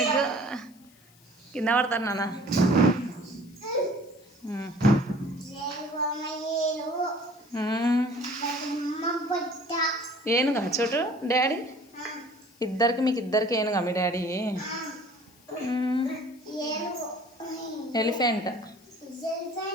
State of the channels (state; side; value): noise; left; hiss, 28 dB below the sound